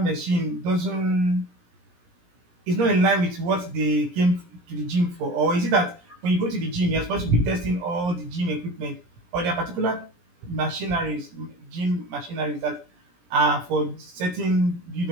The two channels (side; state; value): left; late; 17 ms